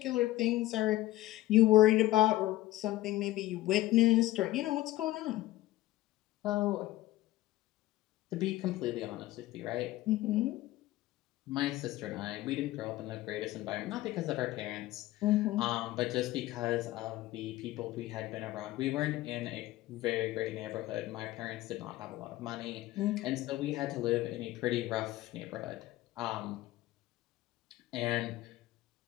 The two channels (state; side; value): quieter; right; 16.5 dB